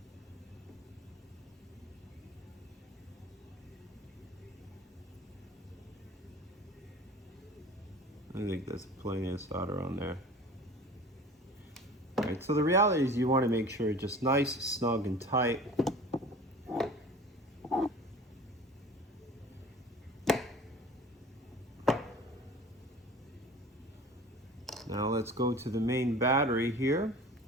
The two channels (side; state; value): both; normal; correlation 0.41